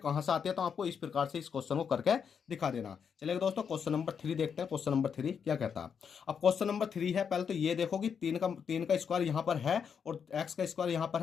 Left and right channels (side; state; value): right; quieter; 7.0 dB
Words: से आती है तो आपको इस प्रकार से इस क्वेश्चन को करके दिखा देना। चलिए दोस्तों क्वेश्चन नंबर 3 देखते हैं, क्वेश्चन नंबर 3 क्या कहता है। अब क्वेश्चन नंबर 3 है, पहले तो ये देखो कि 3 का स्क्वायर यहाँ पर है और x का स्क्वायर यहाँ पर